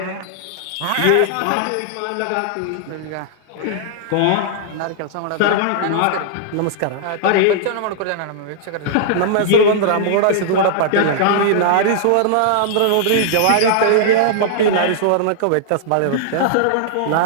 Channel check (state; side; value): different; both; correlation -0.01